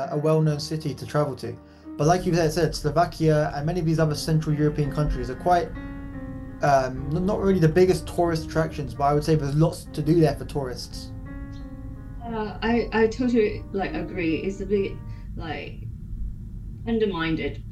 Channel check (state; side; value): identical; both; correlation 1.00